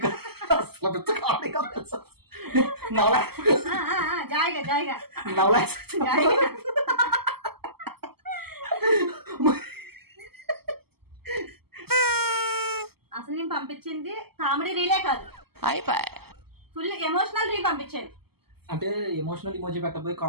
అసలు పెద్ద కామెడీగా తెలుసు. జాయిగా జాయిగా అసలు నేను పంపించింది కామెడీ రీలే కాదు, ఫుల్ ఎమోషనల్ రీల్ పంపించాను. అంటే ఎమోషనల్ ఇమోజీ పెట్టబోయి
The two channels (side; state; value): left; late; 0.96 ms